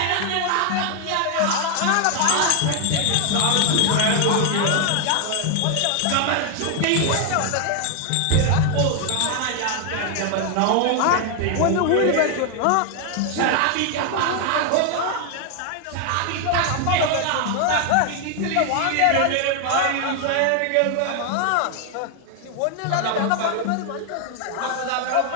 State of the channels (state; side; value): different; both; correlation 0.00